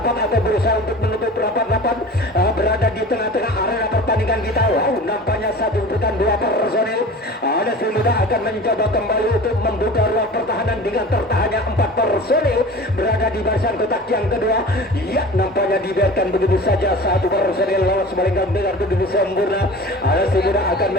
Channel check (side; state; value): both; normal; correlation 0.38